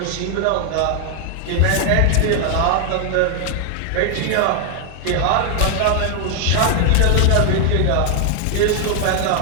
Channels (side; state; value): both; different; correlation 0.00